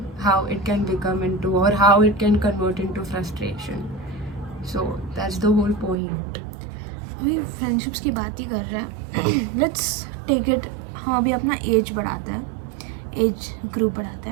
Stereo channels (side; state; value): left; drops out; at 6.0 s